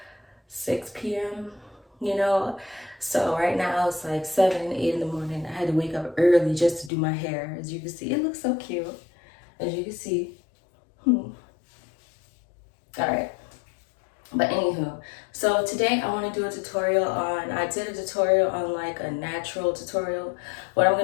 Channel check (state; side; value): drops out; right; at 6.9 s